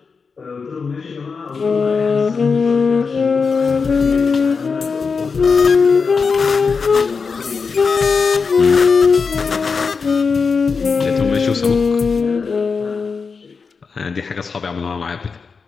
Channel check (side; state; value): right; quieter; 5.1 dB